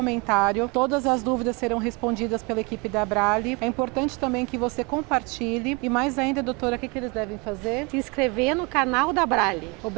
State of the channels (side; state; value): left; quieter; 28.9 dB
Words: Todas as dúvidas serão respondidas pela equipe da Abrale. É importante também que você compartilhe. E mais ainda, doutora, o que eles devem fazer? Se inscrever no canal da Abrale.